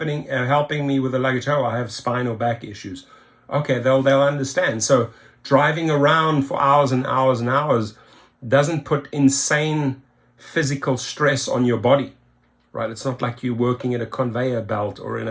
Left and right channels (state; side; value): identical; both; correlation 1.00